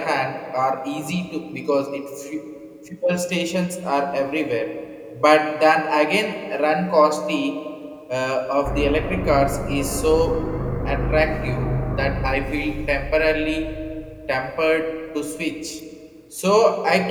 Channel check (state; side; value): identical; both; correlation 1.00